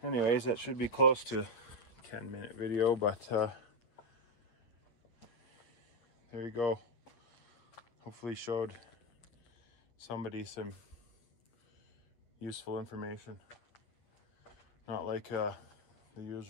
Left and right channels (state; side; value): late; right; 8.5 ms